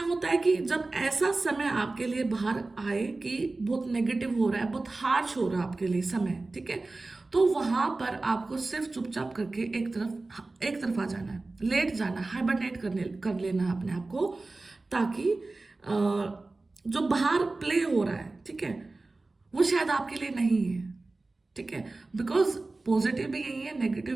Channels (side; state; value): left; quieter; 3.3 dB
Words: है कि जब ऐसा समय आपके लिए बाहर आए कि बहुत नेगेटिव हो रहा है, बहुत हार्श हो रहा है आपके लिए समय, ठीक है, तो वहां पर आपको सिर्फ चुपचाप करके एक तरफ आ जाना है, लेट जाना, हाइबरनेट कर लेना है अपने आप को, ताकि जो बाहर प्ले हो रहा है, ठीक है, वो शायद आपके लिए नहीं है। ठीक है, बिकॉज पॉजिटिव भी यही है, नेगेटिव